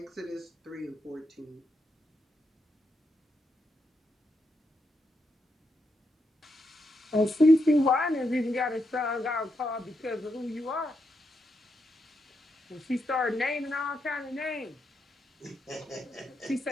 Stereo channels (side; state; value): both; normal; correlation 0.82